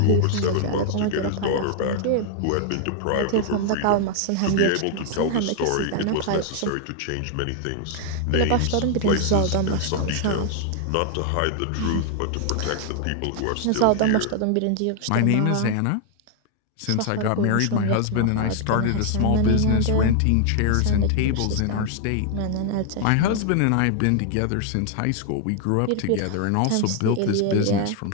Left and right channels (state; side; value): different; both; correlation 0.00